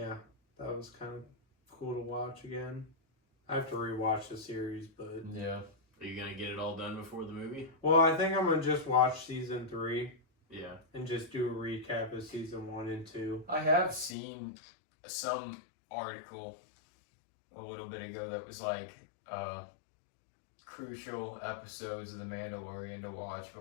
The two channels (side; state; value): right; drops out; at 14.2 s